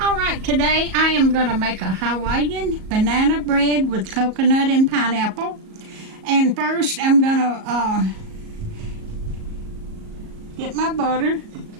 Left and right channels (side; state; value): left; late; 37 ms